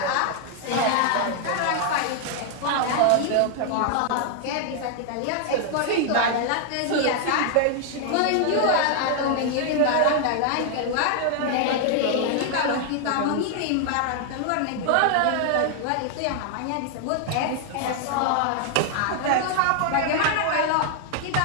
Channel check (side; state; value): both; different; correlation 0.00